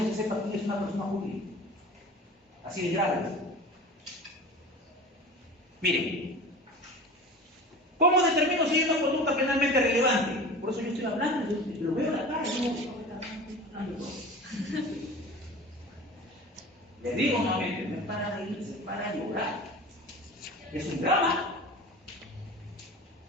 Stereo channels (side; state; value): both; normal; correlation 0.36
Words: se sepa quién es una persona jurídica. Así de grave. Miren, ¿cómo determino si hay una conducta penalmente relevante? Por eso yo estoy hablando, yo lo veo en la cara, les digo nuevamente, no es para reírse, es para llorar. Es un drama.